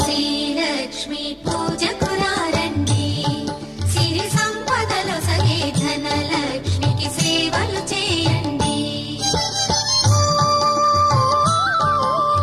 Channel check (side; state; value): both; identical; correlation 1.00